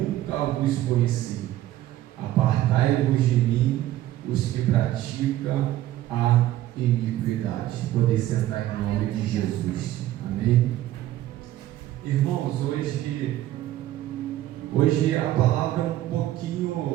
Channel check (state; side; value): quieter; left; 14.0 dB